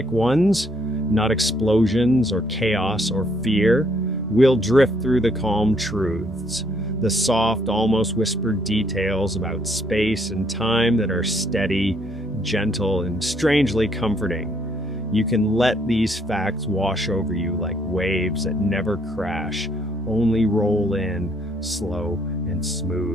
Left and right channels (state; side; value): normal; both; correlation 0.68